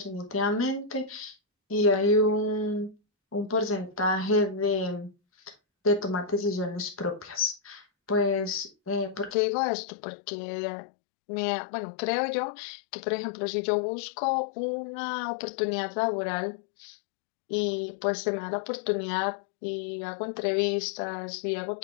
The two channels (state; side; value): drops out; right; at 9.3 s